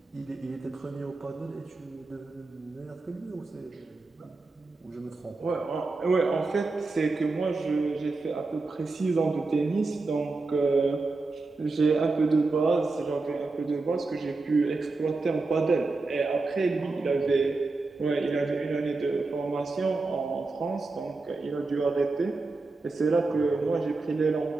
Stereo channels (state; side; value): quieter; left; 3.6 dB